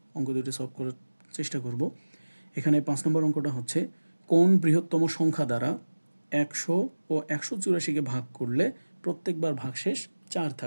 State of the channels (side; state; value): both; inverted; correlation -1.00